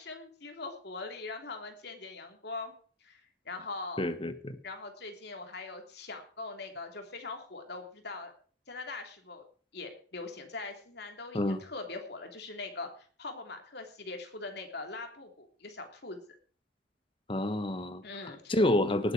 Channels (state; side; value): normal; both; correlation 0.44